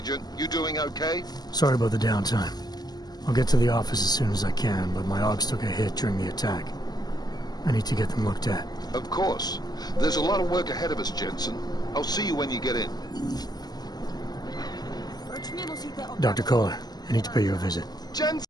You doing okay? Sorry about the downtime. I'll get to the office as soon as I can, but my AUGs took a hit during the attack. I need to get them looked at. Of course. There's a lot of work ahead of us, Jensen. I'll see you when you get in. Dr. Kohler, I need to pay you a visit. Jensen!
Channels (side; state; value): right; late; 0.20 ms